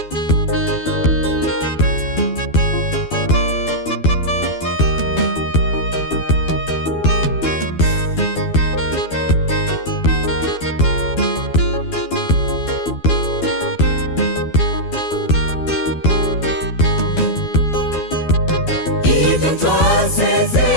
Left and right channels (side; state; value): right; late; 12 ms